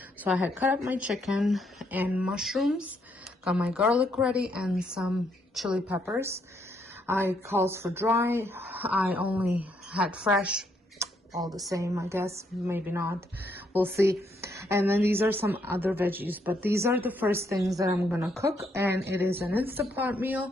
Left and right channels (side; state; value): both; normal; correlation 0.74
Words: So I had cut up my chicken and mushrooms, got my garlic ready and some chili peppers. I calls for dry. I only had fresh. All the same, I guess. Maybe not. We'll see. And then these are some other veggies, but these are the first things that I'm gonna cook, and it is an Instant Pot